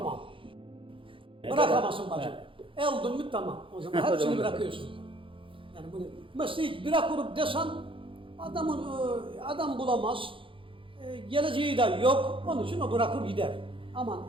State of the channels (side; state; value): left; late; 0.25 ms